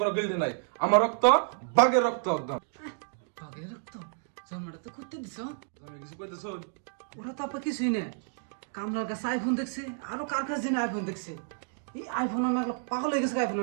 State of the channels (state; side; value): silent; left; 58 dB below the other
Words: কোনো গিলতি নাই আমার রক্ত বাঘের রক্ত একদম বাঘের রক্ত জামাটা তো করতে দিছ আমি কিছু কইতেছ ওরা তো আপা কিছুই নেই কামলার কাছে আইফোন দেখছে আরো কার কাছে জেনে আইফোন দেখছে এই আইফোন নাগলো পাগল হয়ে গেছে আইফোন